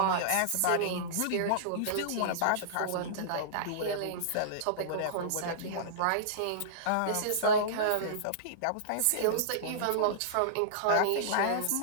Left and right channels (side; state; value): both; different; correlation -0.03